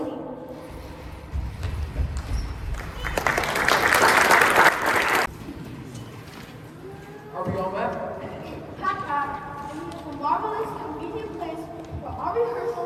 Are we all met? Pack, and it is a marvelous, convenient place for our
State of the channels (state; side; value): identical; both; correlation 1.00